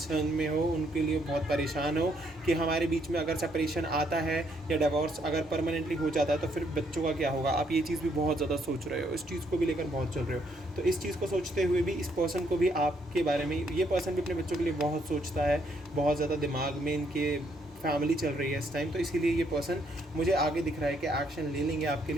में हो, उनके लिए बहुत परेशान हो कि हमारे बीच में अगर सेपरेशन आता है या डिवोर्स अगर परमानेंटली हो जाता है तो फिर बच्चों का क्या होगा। आप ये चीज़ भी बहुत ज़्यादा सोच रहे हो, इस चीज़ को भी लेकर बहुत चल रहे हो। तो इस चीज़ को सोचते हुए भी इस पर्सन को भी आपके बारे में, ये पर्सन भी अपने बच्चों के लिए बहुत सोचता है, बहुत ज़्यादा दिमाग में इनके फैमिली चल रही है इस टाइम, तो इसीलिए ये पर्सन मुझे आगे दिख रहा है कि एक्शन ले लेंगे आपके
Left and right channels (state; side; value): normal; both; correlation 0.71